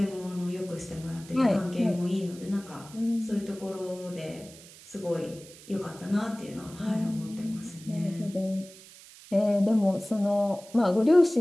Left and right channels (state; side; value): noise; right; hiss, 20 dB below the sound